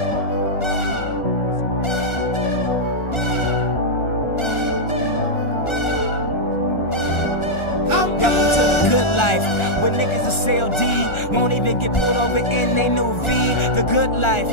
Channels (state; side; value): late; right; 1.4 ms